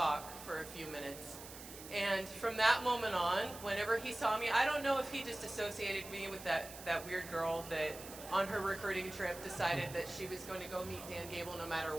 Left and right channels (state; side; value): noise; right; hiss, 13 dB below the sound